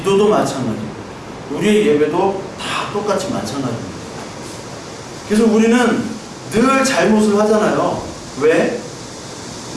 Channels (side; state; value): both; identical; correlation 1.00